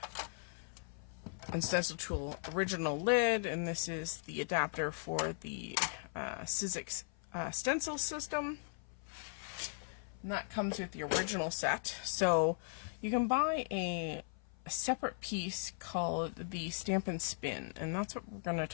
and stencil tool original lid, and this is the adapter for the Sizzix stencil system, and that comes with the original set. So you can buy a separate piece called the stamp and spin, and that's what we're going to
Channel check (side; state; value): right; silent; 52 dB below the other